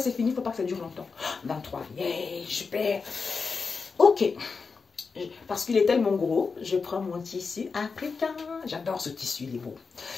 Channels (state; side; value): quieter; right; 4.9 dB